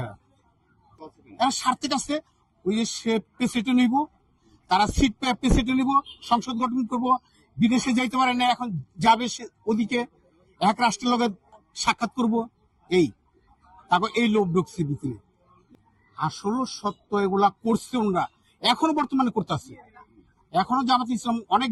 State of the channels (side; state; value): both; identical; correlation 1.00